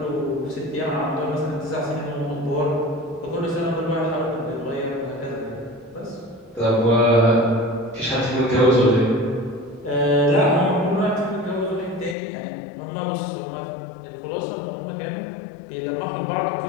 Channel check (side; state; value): right; drops out; at 12.2 s